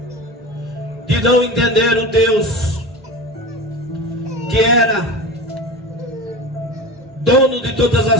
de não entender o Deus que era dono de todas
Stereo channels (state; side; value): normal; both; correlation 0.30